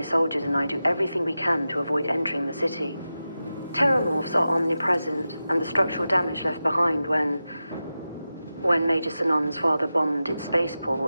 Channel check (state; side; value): inverted; both; correlation -0.93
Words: soldiers and I do everything we can to avoid entering the city. Terramorphs are omnipresent, and the structural damage left behind when Major Sinan's father bombed its